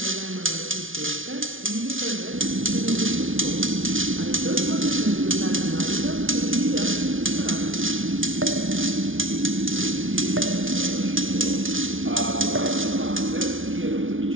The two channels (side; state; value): left; late; 0.57 ms